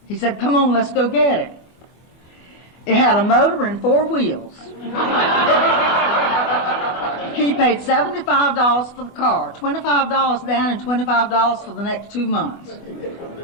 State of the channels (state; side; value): late; right; 25 ms